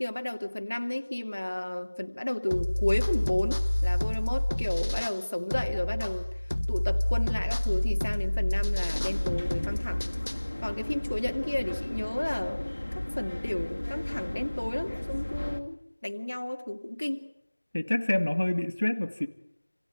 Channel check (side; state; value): both; inverted; correlation -1.00